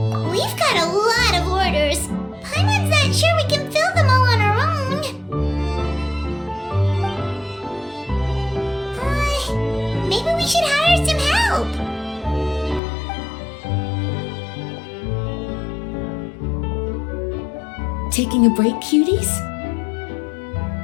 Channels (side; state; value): right; drops out; at 12.8 s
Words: We've got a lot of orders. Paimon's not sure we can fill them all on our own. Maybe we should hire some help. Taking a break, cuties?